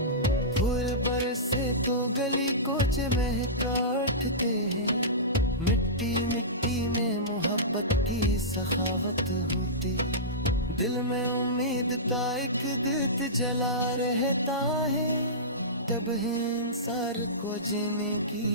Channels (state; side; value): normal; both; correlation -0.19